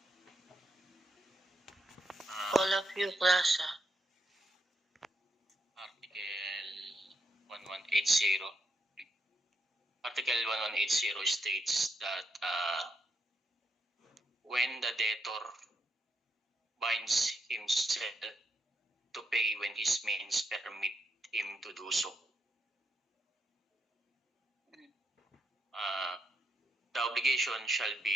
All of you class Article 1180. Article 1180 states that when the debtor binds himself to pay when his means permit him to do so, the obligation shall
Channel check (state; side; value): normal; both; correlation 0.79